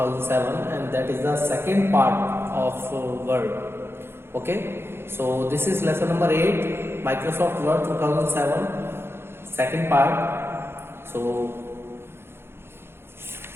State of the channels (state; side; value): late; left; 0.11 ms